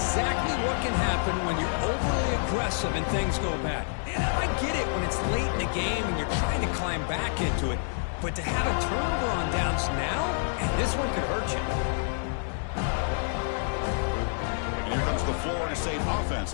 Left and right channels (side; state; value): right; silent; digital silence